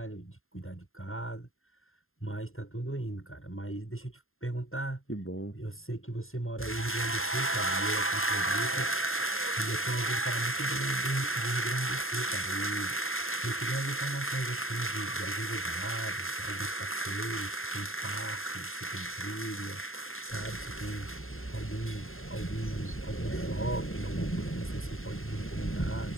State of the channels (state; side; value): late; right; 0.61 ms